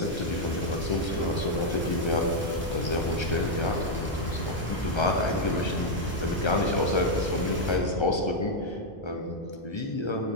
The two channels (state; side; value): normal; both; correlation 0.00